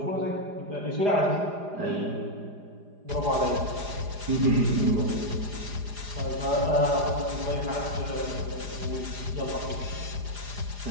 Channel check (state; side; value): late; left; 4.9 ms